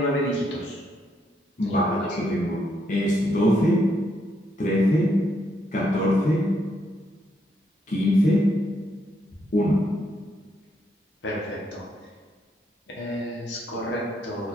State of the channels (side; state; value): both; normal; correlation 0.76